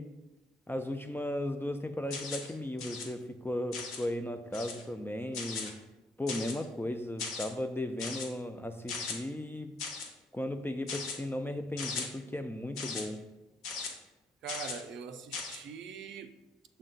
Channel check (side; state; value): both; normal; correlation 0.74